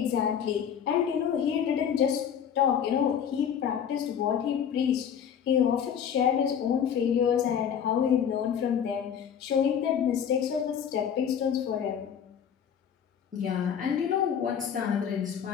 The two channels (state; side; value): quieter; right; 8.3 dB